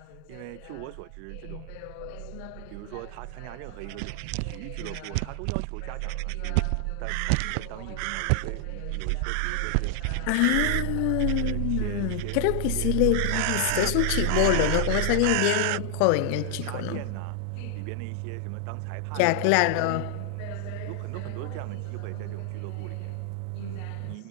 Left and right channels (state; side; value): different; both; correlation 0.00